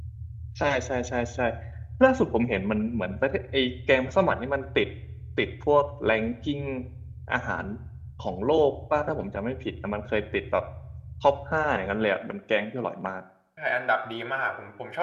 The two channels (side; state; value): both; identical; correlation 1.00